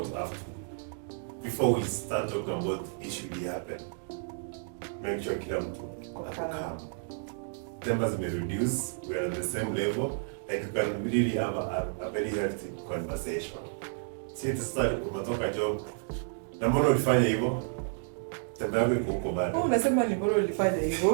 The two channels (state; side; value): silent; left; digital silence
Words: have to, before we start talking about issue that happen, make sure kila mtu ako calm. Tempers may reduce, we are on the same level, like we can really have a very healthy conversation. See, to start, umetoka job, na mbona ulifanya hivyo? Tembe yako iko huko bado. Unasema ni mbona ulifanya hivyo?